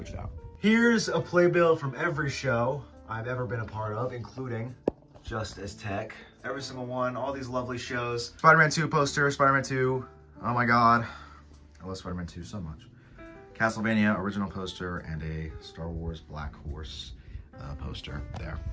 it out. Here's a playbill from every show I've ever been a part of, including Just As Tech. Every single one, all these lovely shows. Spider-Man 2 poster, Spider-Man 2. Oh my God. I love Spider-Man 2 so much. Castlevania original poster and a Star Wars Black Horse poster there.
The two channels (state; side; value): identical; both; correlation 1.00